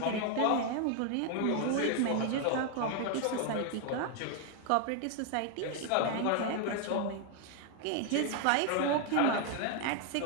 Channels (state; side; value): different; both; correlation 0.01